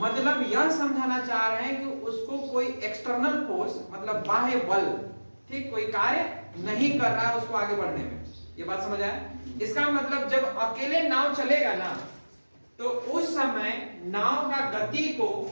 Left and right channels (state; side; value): inverted; both; correlation -1.00